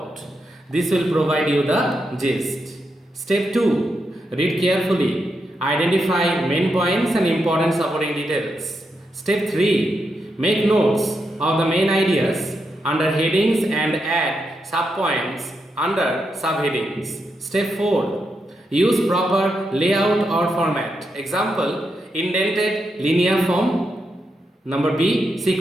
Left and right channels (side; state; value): both; normal; correlation 0.83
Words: This will provide you the gist. Step 2. Read carefully. Identify main points and important supporting details. Step 3. Make notes of the main ideas under headings and add subpoints under subheadings. Step 4. Use proper layout or format. Example, indented linear form. Number B,